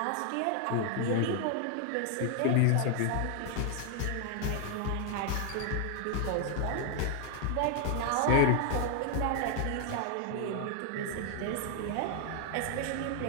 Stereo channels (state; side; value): different; both; correlation 0.00